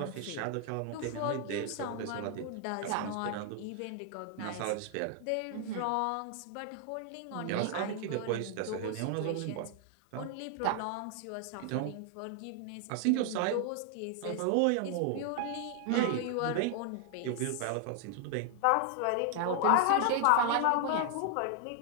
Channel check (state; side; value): different; both; correlation 0.00